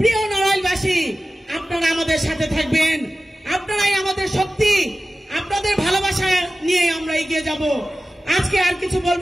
নড়াইলবাসী, আপনারা আমাদের সাথে থাকবেন, আপনারাই আমাদের শক্তি। আপনাদের ভালোবাসা নিয়ে আমরা এগিয়ে যাব। আজকে আর কিছু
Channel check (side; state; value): both; normal; correlation 0.95